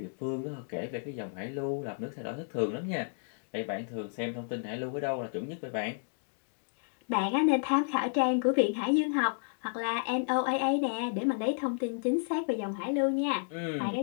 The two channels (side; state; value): right; silent; digital silence